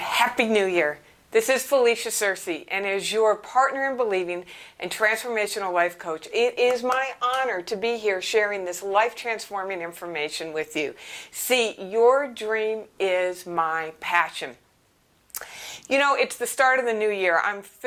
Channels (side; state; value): both; identical; correlation 1.00